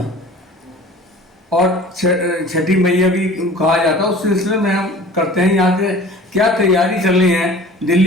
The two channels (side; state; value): both; normal; correlation 0.44